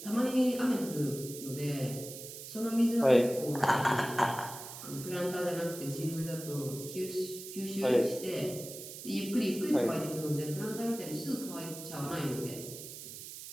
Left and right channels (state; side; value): noise; right; hiss, 11 dB below the sound